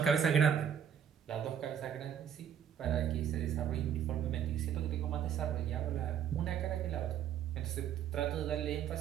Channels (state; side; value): quieter; left; 8.8 dB